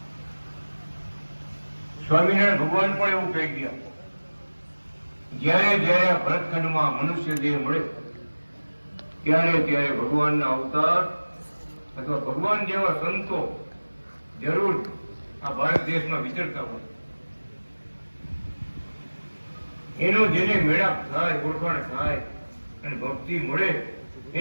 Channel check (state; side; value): inverted; both; correlation -1.00